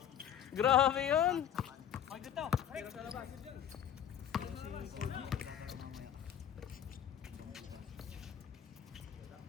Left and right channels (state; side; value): quieter; right; 9.7 dB